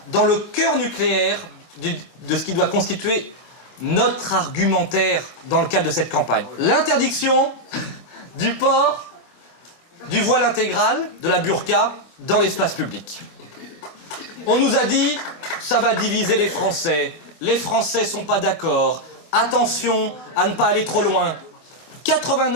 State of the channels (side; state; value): right; late; 25 ms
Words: dans le cœur nucléaire de ce qui doit constituer notre argumentaire dans le cadre de cette campagne. L'interdiction du port du voile intégral, de la burqa, dans l'espace public. On nous a dit, ça va diviser les Français sont pas d'accord, attention à ne pas aller trop loin.